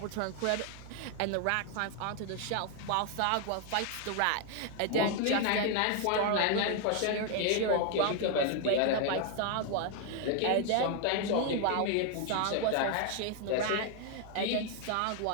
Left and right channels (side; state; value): both; different; correlation 0.00